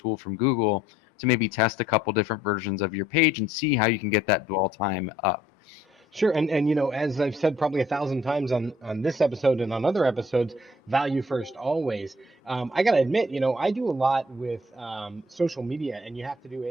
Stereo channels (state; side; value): normal; both; correlation 0.61